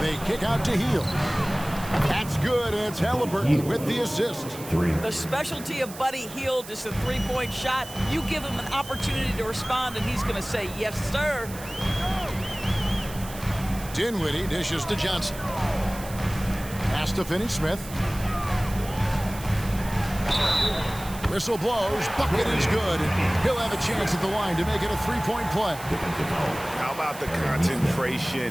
They kick out to Hield. That's good, and it's Halliburton with the assist. The specialty of Buddy Hield is a three-point shot. You give him an opportunity to respond, and he's going to say, yes, sir. Dinwiddie dishes to Johnson. Pass to Finney-Smith. Whistle blows. Bucket is good. He'll have a chance at the line to make it a three-point play. How about the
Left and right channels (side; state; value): right; noise; hiss, 15 dB below the sound